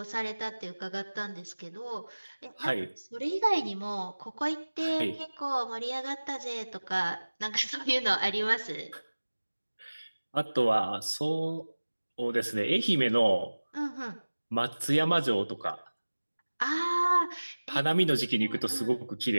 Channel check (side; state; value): both; inverted; correlation -1.00